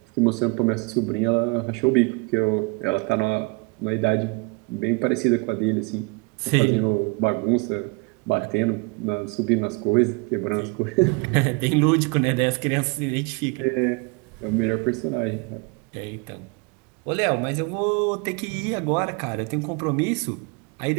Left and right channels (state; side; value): quieter; left; 30.0 dB